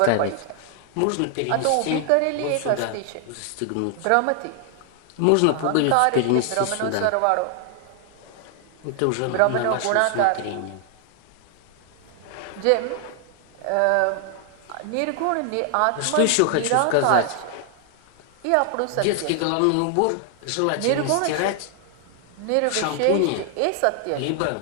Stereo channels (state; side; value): different; both; correlation 0.00